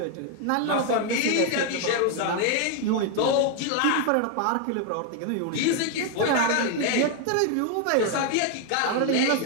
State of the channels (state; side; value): different; both; correlation 0.00